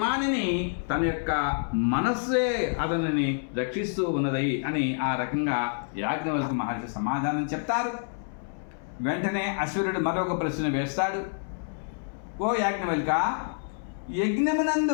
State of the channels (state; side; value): silent; right; 60 dB below the other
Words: తన యొక్క మనస్సే అతనిని రక్షిస్తూ ఉన్నది అని ఆ రకంగా యాజ్ఞవల్క్య మహర్షి సమాధానం చెప్తారు. వెంటనే అశ్వరుడు మరొక ప్రశ్న వేస్తాడు. ఓ యాజ్ఞవల్క్య,